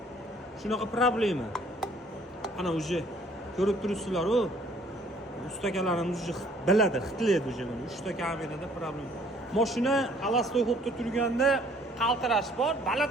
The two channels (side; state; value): both; normal; correlation 0.59